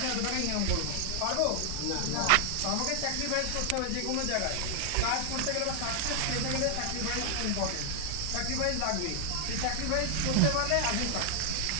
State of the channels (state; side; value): different; both; correlation 0.00